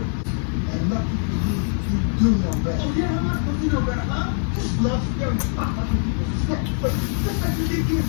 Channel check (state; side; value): silent; right; 56 dB below the other